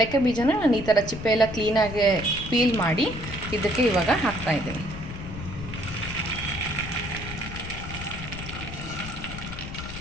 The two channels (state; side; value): noise; left; rumble, 10 dB below the sound